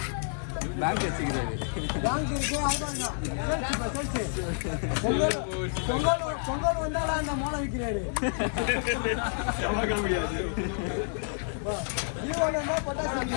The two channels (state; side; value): silent; right; 58 dB below the other